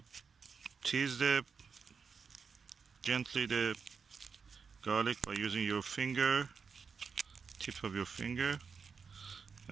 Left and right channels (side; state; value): left; quieter; 5.6 dB